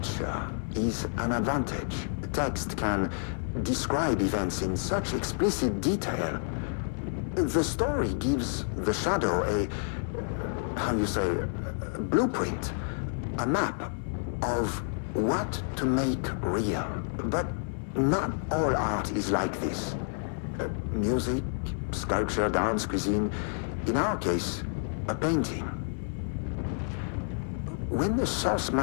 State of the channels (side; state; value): right; silent; digital silence